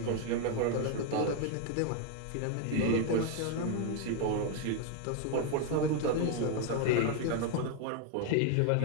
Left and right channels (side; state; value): both; different; correlation 0.01